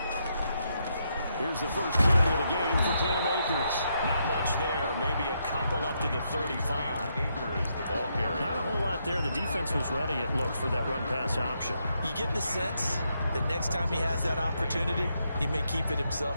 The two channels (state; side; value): inverted; both; correlation -0.79